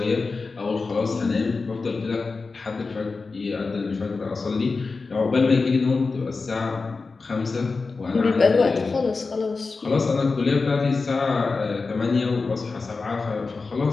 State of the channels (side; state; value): right; quieter; 4.2 dB